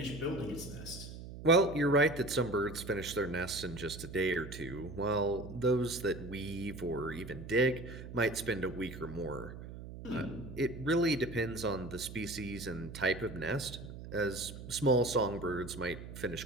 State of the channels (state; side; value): noise; right; hum, 11 dB below the sound